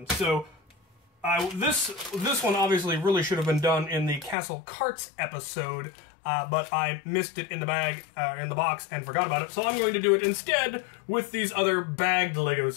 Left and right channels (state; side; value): drops out; right; at 4.4 s